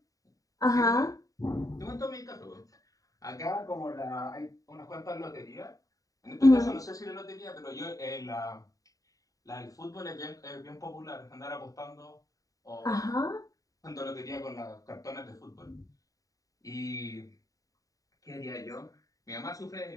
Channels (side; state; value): right; late; 0.17 ms